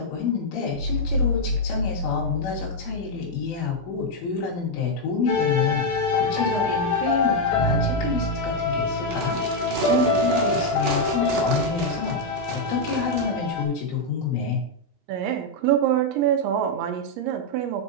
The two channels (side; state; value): both; normal; correlation 0.00